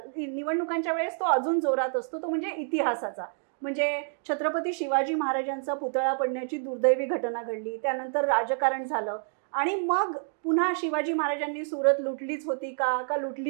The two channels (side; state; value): left; silent; digital silence